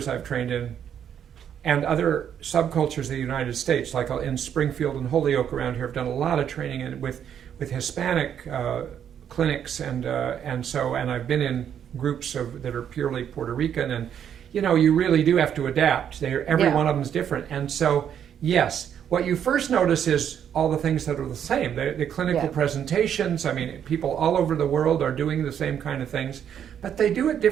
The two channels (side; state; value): left; quieter; 9.0 dB